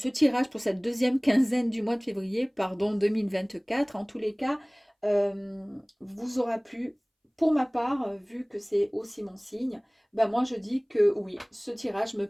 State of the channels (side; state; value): both; identical; correlation 1.00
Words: tirage pour cette deuxième quinzaine du mois de février, pardon, 2024, en tous les cas, vous aura plu. Pour ma part, vu que c'est aussi mon signe, ben moi je dis que oui, ce tirage me